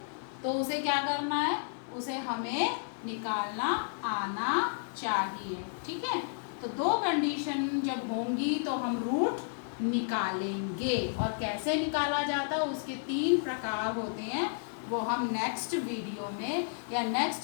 उसे क्या करना है, उसे हमें निकालना आना चाहिए। ठीक है, तो 2 कंडीशन जब होंगी तो हम रूट निकालेंगे, और कैसे निकाला जाता है उसके 3 प्रकार होते हैं, वो हम नेक्स्ट वीडियो में या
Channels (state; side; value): silent; right; digital silence